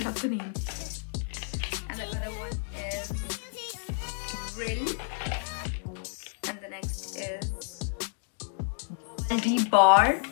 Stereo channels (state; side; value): silent; right; digital silence